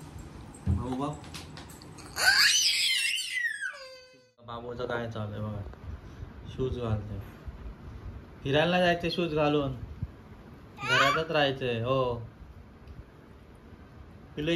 बाबू बाबूचं काय चालू आहे बघा. शूज घालतोय. फिरायला जायचे शूज घालून, घरातच राहायचंय. हो पिल्लू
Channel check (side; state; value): both; identical; correlation 1.00